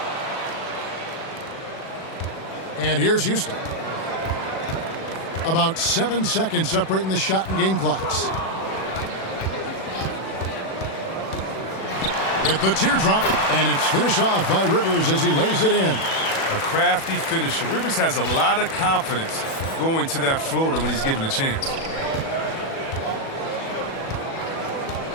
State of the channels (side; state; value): right; late; 37 ms